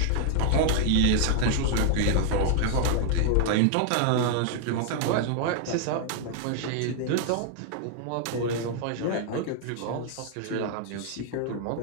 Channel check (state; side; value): different; both; correlation 0.00